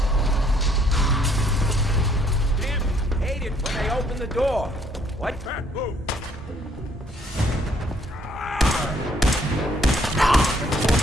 Damn, hate it when they open the door. What? Move.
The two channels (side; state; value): both; normal; correlation 0.65